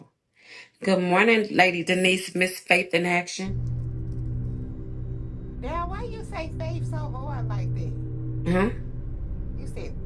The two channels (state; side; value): identical; both; correlation 1.00